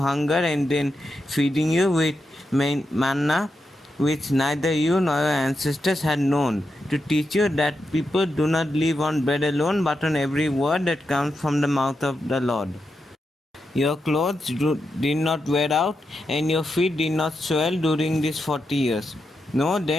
and then feeding you with manna, which neither you nor your ancestors had known, to teach you that people do not live on bread alone, but on every word that comes from the mouth of the Lord. Your clothes did not wear out, and your feet did not swell during these 40 years. Know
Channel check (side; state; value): both; normal; correlation 0.86